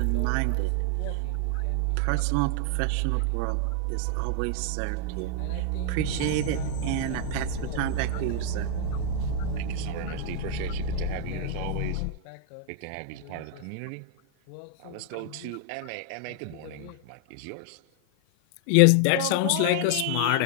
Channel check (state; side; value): different; both; correlation 0.00